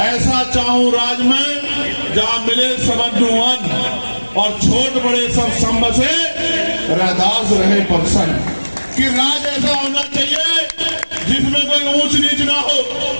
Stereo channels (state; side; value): inverted; both; correlation -1.00